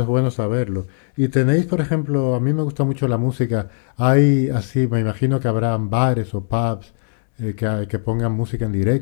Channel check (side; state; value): right; silent; digital silence